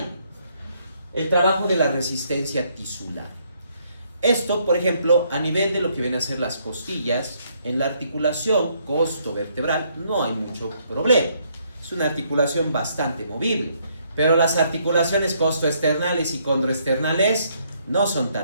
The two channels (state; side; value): inverted; both; correlation -0.70